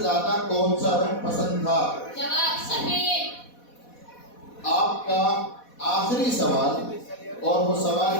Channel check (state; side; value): late; right; 4.1 ms